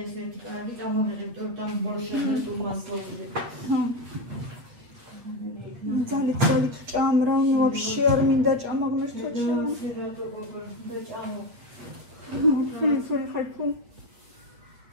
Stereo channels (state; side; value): late; left; 8.4 ms